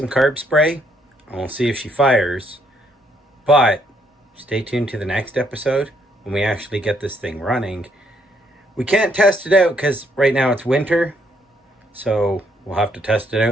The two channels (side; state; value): both; normal; correlation 0.71